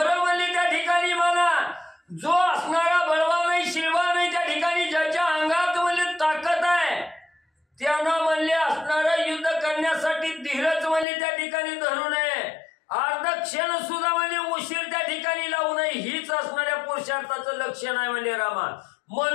म्हणले त्या ठिकाणी मला. जो असणारा बळवान नाही शिलवान नाही त्या ठिकाणी ज्याच्या अंगात म्हणले ताकद आहे त्यानं म्हणले असणारं युद्ध करण्यासाठी धीरच म्हणले त्या ठिकाणी धरू नये. अर्ध क्षण सुद्धा म्हणजे उशीर त्या ठिकाणी लावू नये हीच असणाऱ्या पुरुषार्थाचं लक्षण आहे म्हणले रामा.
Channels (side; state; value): right; drops out; at 11.1 s